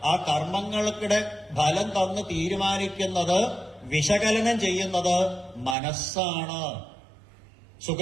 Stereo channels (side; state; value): left; drops out; at 5.8 s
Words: ആ കർമ്മങ്ങളുടെ ഫലം തന്ന് തീരുമാനിക്കുന്നത്, വിശകലനം ചെയ്യുന്നത് മനസ്സാണ്.